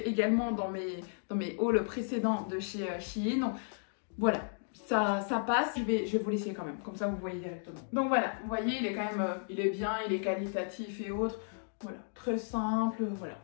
également dans mes hauls précédents de chez Shein. Donc voilà, ça passe, je vais vous laisser quand même, comme ça vous voyez directement. Donc voilà, vous voyez, il est quand même, il est bien, il est qualitatif et autres. Voilà, très simple, voilà.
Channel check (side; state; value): right; silent; digital silence